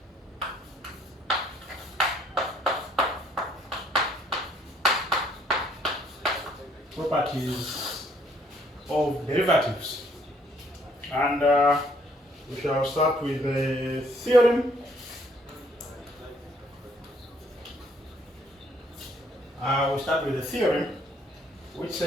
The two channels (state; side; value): normal; both; correlation 0.64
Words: Properties of derivatives, and we shall start with the theorem. We start with the theorem, which